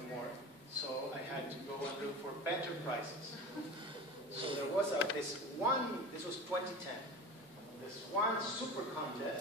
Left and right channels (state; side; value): normal; both; correlation 0.32